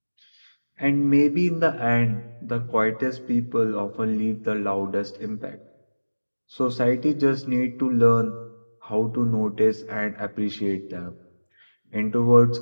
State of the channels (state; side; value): inverted; both; correlation -1.00